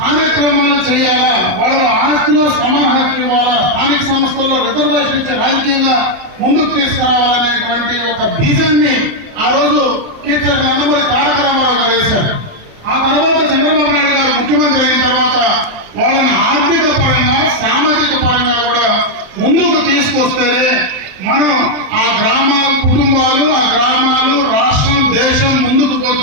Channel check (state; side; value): late; left; 27 ms